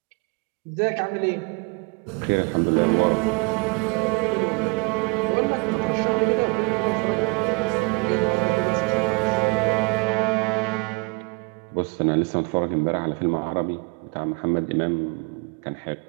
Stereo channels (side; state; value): left; quieter; 29.8 dB